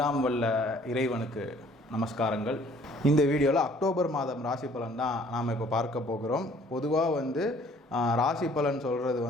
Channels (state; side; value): normal; both; correlation 0.57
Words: வல்ல இறைவனுக்கு நமஸ்காரங்கள். இந்த வீடியோவில் அக்டோபர் மாதம் ராசி பலன் தான் நாம் இப்போ பார்க்க போகிறோம். பொதுவாக ராசி பலன்